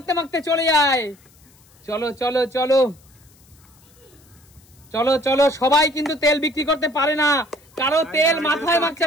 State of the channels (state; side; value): noise; left; hiss, 29 dB below the sound